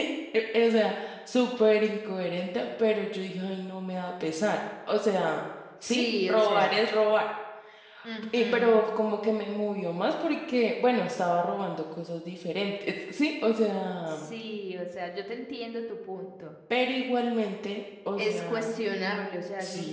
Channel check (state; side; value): identical; both; correlation 1.00